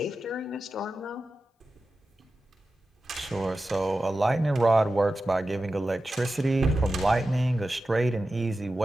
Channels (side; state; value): both; normal; correlation 0.93